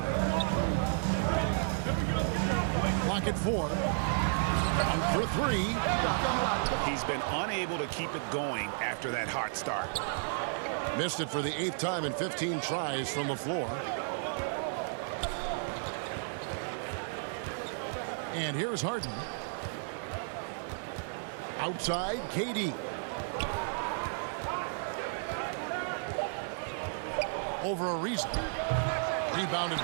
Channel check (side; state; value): left; silent; 56 dB below the other